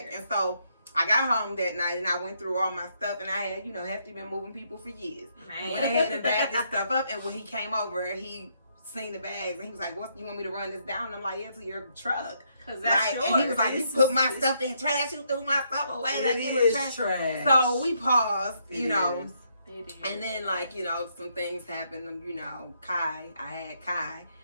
And so I got home that night and I went through all my stuff and I had, Hefty been moving people for years. Went ahead and bagged this stuff up. And when he came over, he seen the bags and he was like, "What, you want me to run this down?" And I'm like, "Yeah, to your truck." And he was like, "You put my stuff in trash. You threw my stuff away. It is trash." So we paused, and then some things happened. I had Kai,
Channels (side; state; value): both; inverted; correlation -0.74